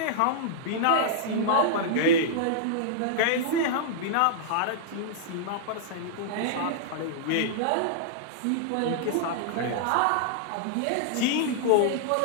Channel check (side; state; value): both; different; correlation -0.02